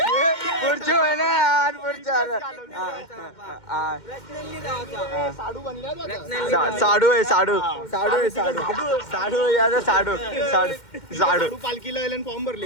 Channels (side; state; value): right; late; 2.1 ms